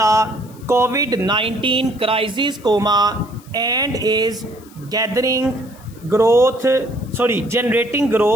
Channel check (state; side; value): noise; left; hiss, 25 dB below the sound